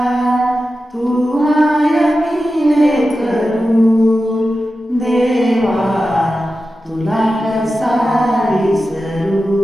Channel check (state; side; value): normal; both; correlation 0.92